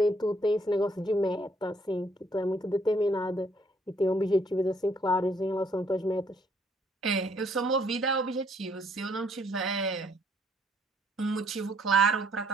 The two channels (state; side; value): normal; both; correlation 0.66